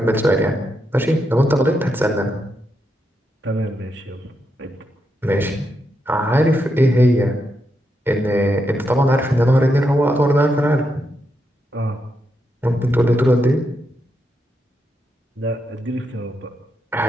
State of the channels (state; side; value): normal; both; correlation 0.82